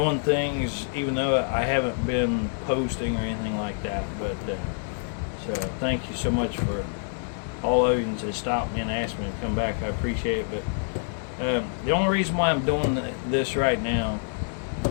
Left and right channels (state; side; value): silent; right; digital silence